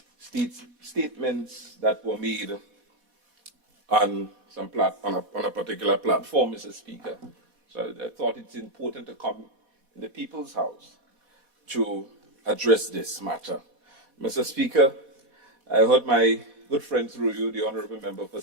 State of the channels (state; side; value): late; left; 4.1 ms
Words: statements that were made on a particular platform, Mr. Speaker. So I thought it's important to come in the People's House to address this matter. Mr. Speaker, I heard my good friend through you, the Honourable Member for